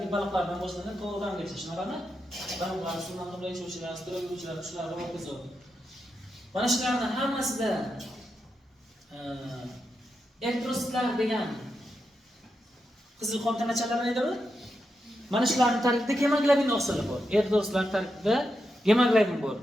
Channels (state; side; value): normal; both; correlation 0.86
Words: baliqlardan boshlanib to'g'ridangacha, shunaqami? Baliqlar, suvdan qimray yashovchilar, sudrab yuruvchilar, shular va hokazo. Mana shularning hammasida elektrositlar degan qizil qon tanachalarni aytadi. Mana shularning tarkibida gemoglobin oqsili bor. Elektrositlar tarkibida gemoglobin bor.